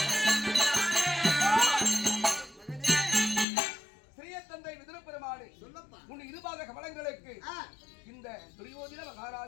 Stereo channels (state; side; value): drops out; right; at 3.5 s